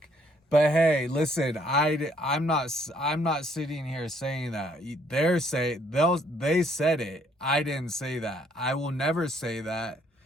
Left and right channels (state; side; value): normal; both; correlation 0.66